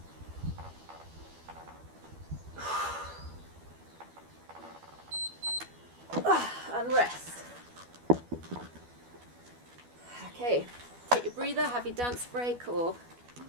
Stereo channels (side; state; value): left; late; 12 ms